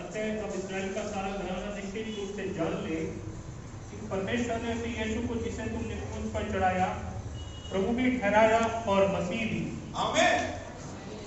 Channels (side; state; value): both; identical; correlation 1.00